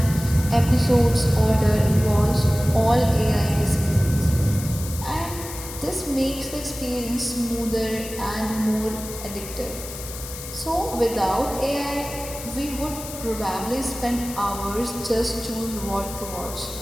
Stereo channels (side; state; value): left; noise; hiss, 11 dB below the sound